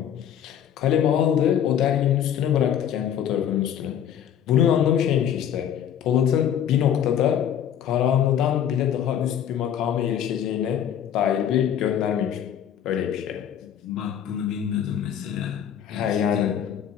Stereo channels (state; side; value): quieter; right; 9.5 dB